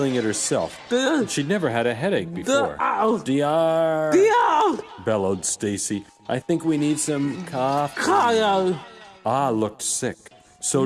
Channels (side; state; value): both; identical; correlation 1.00